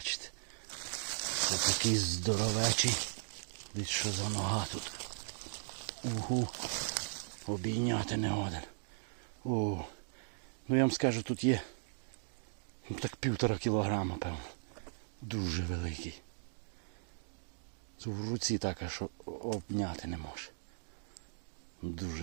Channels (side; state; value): left; silent; digital silence